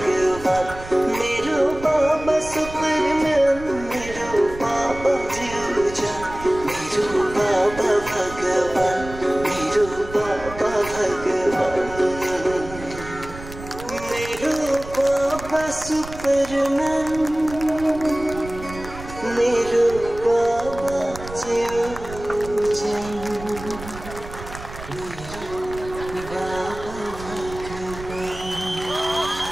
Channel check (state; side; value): noise; right; rumble, 13 dB below the sound